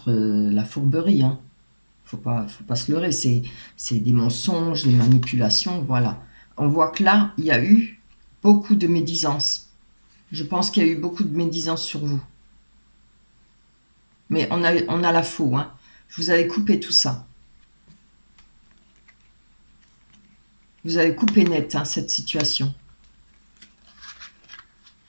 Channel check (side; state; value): both; inverted; correlation -1.00